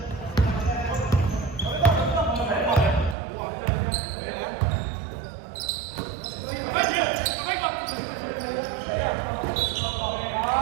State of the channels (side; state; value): left; drops out; at 3.2 s